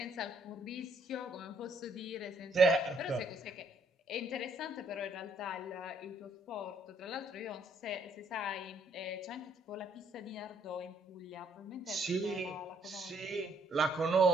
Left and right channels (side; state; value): both; normal; correlation 0.67